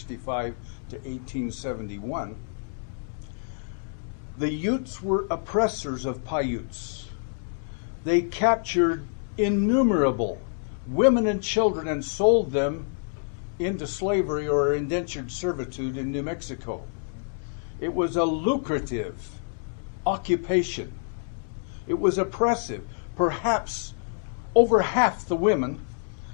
to 1871. The Utes were oppressors of Paiutes. They captured innumerable women and children and sold them into slavery or indentured servitude in New Mexico. It was a lucrative occupation. It was oppressive. Perhaps over half the women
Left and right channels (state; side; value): silent; right; digital silence